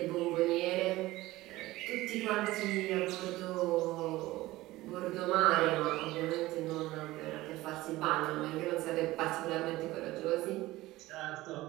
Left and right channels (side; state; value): left; quieter; 18.0 dB